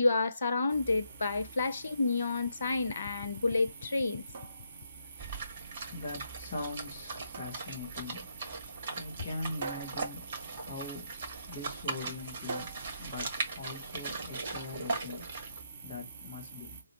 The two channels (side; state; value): both; inverted; correlation -0.78